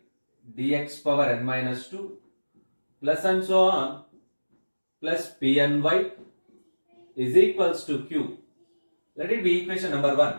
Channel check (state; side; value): inverted; both; correlation -1.00